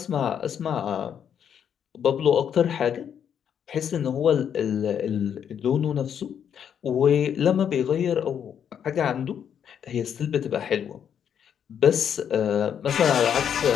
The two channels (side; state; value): right; quieter; 8.5 dB